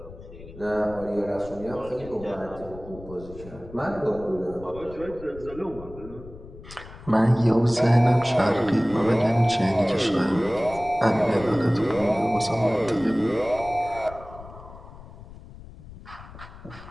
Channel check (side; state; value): left; noise; rumble, 17 dB below the sound